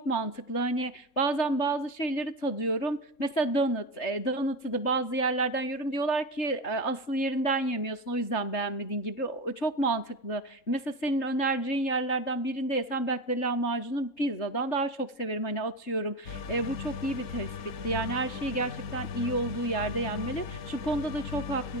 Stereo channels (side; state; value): right; late; 3.3 ms